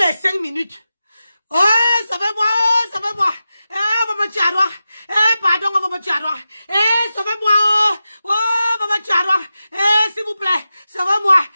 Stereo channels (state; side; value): inverted; both; correlation -0.92